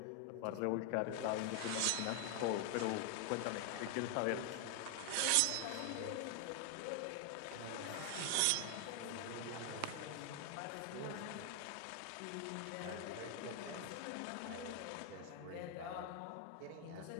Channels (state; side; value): different; both; correlation 0.00